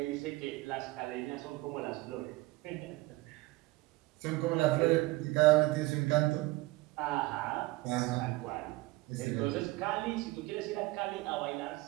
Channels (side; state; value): left; quieter; 20.6 dB